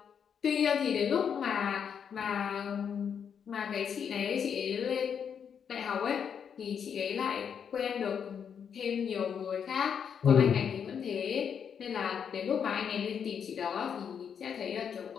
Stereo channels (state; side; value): quieter; right; 7.5 dB